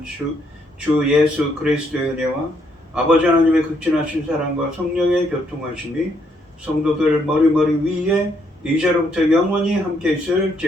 주 예수 그리스도의 은혜와 아버지 하나님의 극진하신 사랑과 성령의 교통하심이 성도들 머리머리 위에 이제로부터 영원히 함께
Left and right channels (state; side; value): normal; both; correlation 0.72